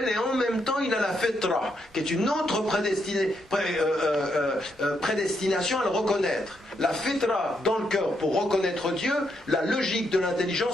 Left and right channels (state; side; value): normal; both; correlation 0.78